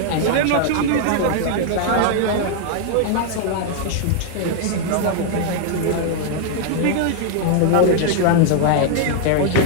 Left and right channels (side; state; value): both; different; correlation 0.00